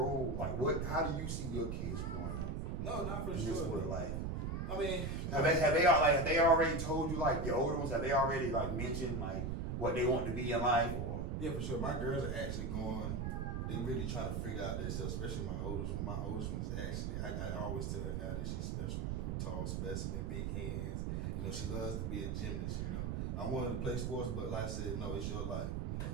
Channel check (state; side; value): noise; right; rumble, 1 dB below the sound